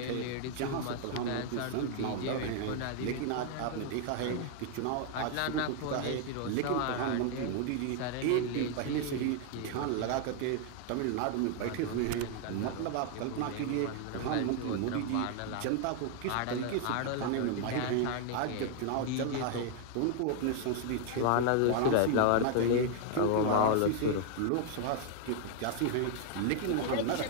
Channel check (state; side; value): different; both; correlation 0.00